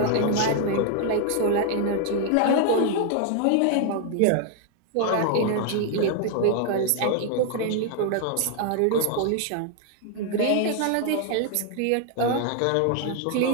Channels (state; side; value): different; both; correlation 0.00